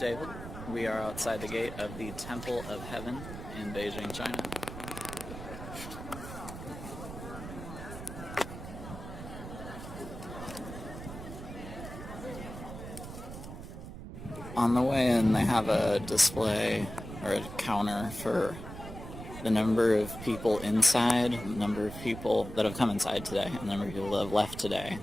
We are outside the gate of the Temple of Heaven in Beijing, China. On the way in, they have a display or a counter for the number of people inside, the number of people that have come inside today, and the number of people that have left today,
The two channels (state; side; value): noise; right; rumble, 10 dB below the sound